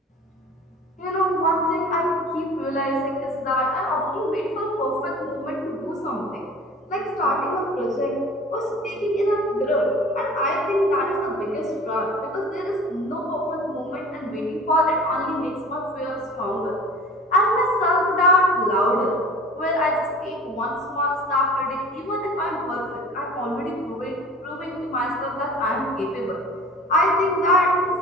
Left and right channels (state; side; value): normal; both; correlation 0.43